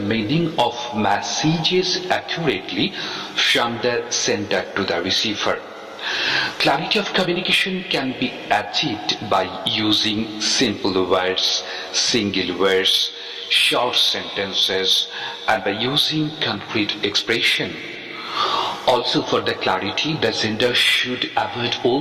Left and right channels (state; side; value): identical; both; correlation 1.00